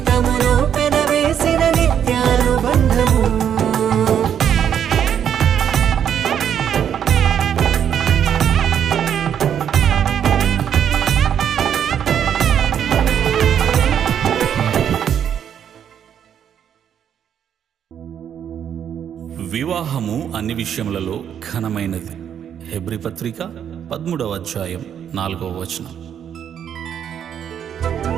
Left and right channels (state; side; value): quieter; left; 8.9 dB